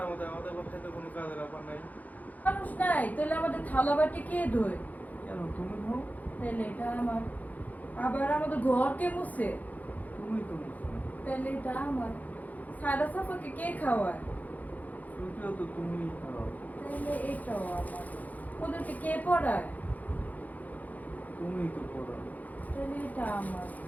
মতো আমাদের বাসায় তো কোনো কাজের ব্যাপার নাই। মানুষ নাই, তাহলে আমাদের থালা বাটি কে ধোয়? কেন তুমি ধো? তাহলে এটা আমার। আবার আমাদের ঘর কে মুছে? তুমি তো মুছো। তাহলে এটা আমার। সাদা সাফাকে কে খাওয়ায়? ছুটিও তো তুমিই খাও। তাহলে এটাও আমার। ওদেরকে কে পড়ায়? তুমিই তো পড়াও। তাহলে এটা আমার।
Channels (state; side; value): late; right; 0.079 ms